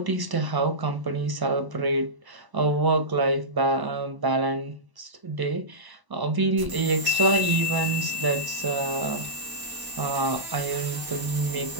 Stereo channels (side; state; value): left; late; 1.0 ms